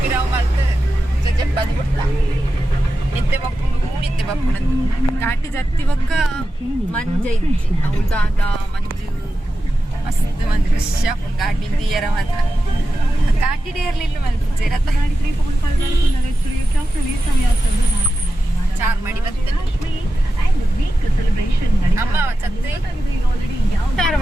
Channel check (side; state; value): both; normal; correlation 0.92